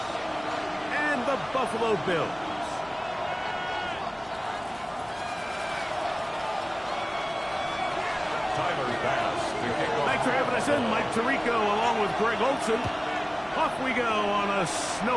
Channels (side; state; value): left; noise; hum, 24 dB below the sound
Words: and the Buffalo Bills. Thanks for having us in, Mike Tirico, along with Greg Olson. Off we go on a